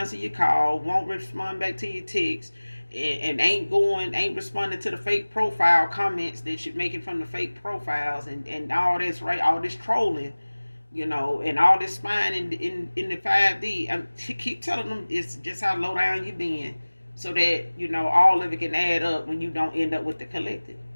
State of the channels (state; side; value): inverted; both; correlation -1.00